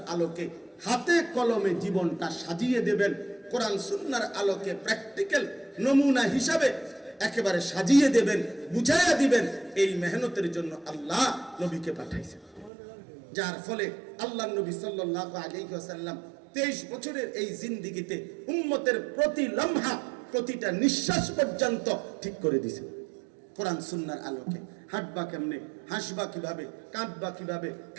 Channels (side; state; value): left; drops out; at 12.7 s